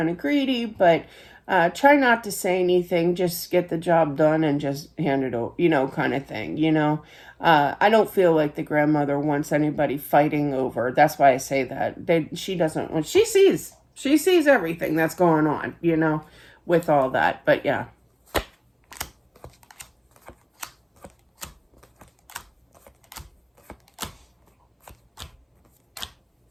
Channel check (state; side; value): identical; both; correlation 1.00